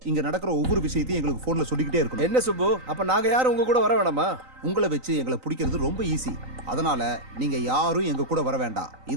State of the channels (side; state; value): left; late; 3.9 ms